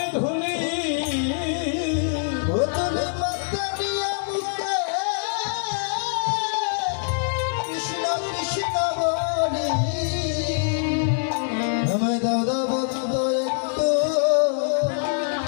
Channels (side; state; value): right; silent; digital silence